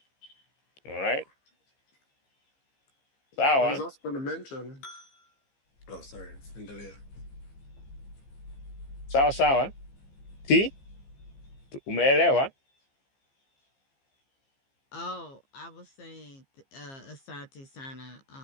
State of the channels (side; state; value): right; late; 15 ms